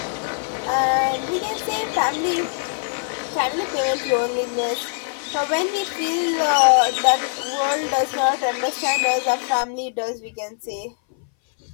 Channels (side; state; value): right; silent; 60 dB below the other